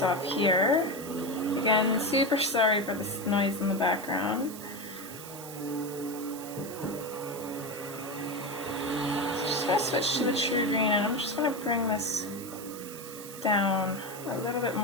off here. Again, super sorry for this noise in the background. I'm going to switch to the true green, and I'm just going to bring this down a little bit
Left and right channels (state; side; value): noise; right; hiss, 13 dB below the sound